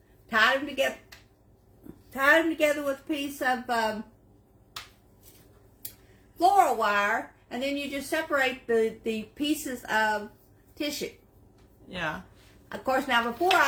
tied them together with a piece of floral wire, and then you just separate the pieces of tissue. Yeah. Of course, now before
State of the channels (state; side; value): identical; both; correlation 1.00